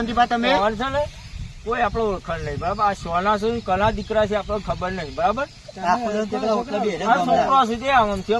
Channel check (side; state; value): both; identical; correlation 1.00